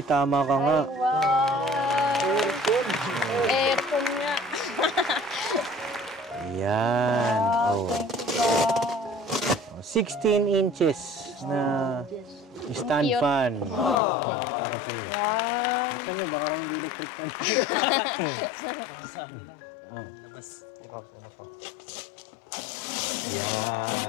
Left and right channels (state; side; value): drops out; right; at 14.0 s